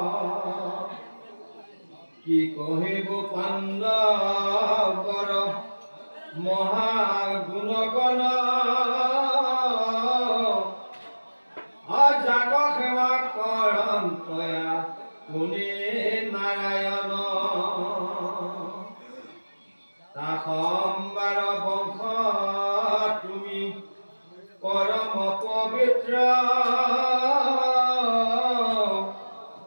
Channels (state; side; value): inverted; both; correlation -1.00